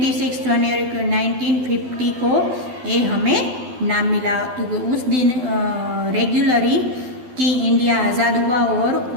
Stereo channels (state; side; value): late; left; 12 ms